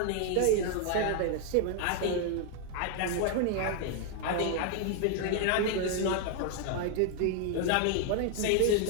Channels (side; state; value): both; different; correlation 0.00